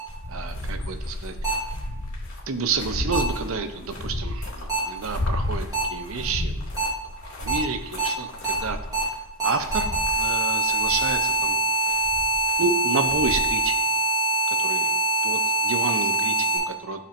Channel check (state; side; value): normal; both; correlation -0.10